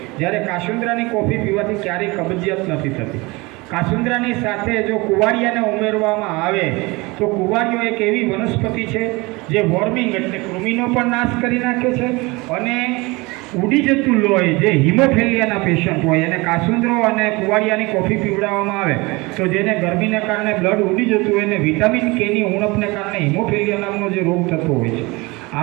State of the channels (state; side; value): quieter; left; 24.3 dB